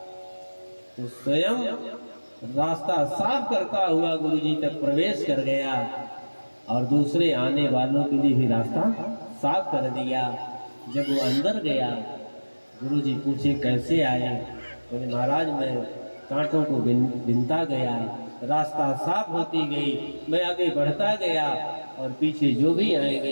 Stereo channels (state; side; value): inverted; both; correlation -1.00